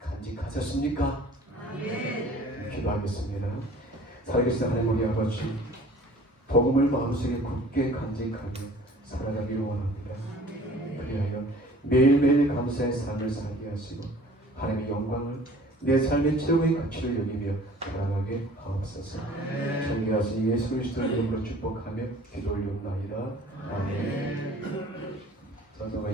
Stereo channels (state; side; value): normal; both; correlation 0.49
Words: 기도하겠습니다. 살아계신 하나님 우리 아버지, 복음을 마음속에 굳게 간직하며 살아가기를 원합니다. 그리하여 매일매일 감사의 삶을 살게 하시고 하나님의 영광을 내 삶의 최고의 가치를 여기며 살아가게 하옵소서. 존귀하신 예수 그리스도의 이름으로 축복하며 기도 올리옵나이다. 아멘. 전서가